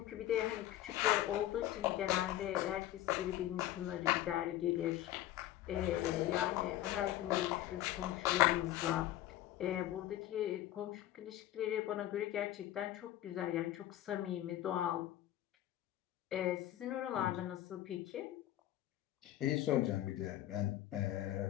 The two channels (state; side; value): quieter; right; 13.8 dB